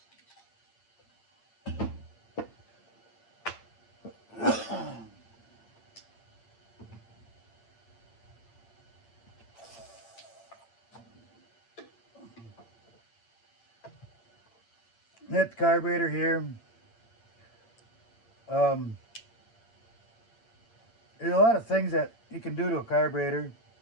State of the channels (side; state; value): right; late; 8.8 ms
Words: Hit the carburetor here. There's a lot of things that you can do to a carburetor